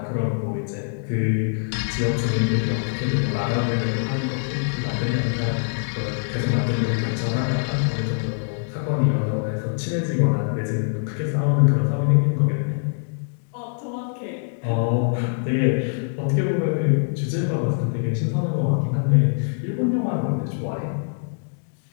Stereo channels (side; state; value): right; silent; digital silence